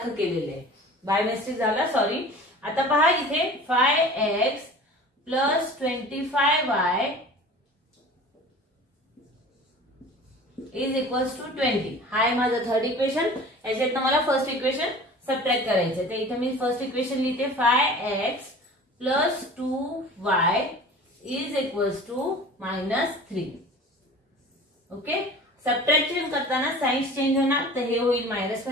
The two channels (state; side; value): normal; both; correlation 0.41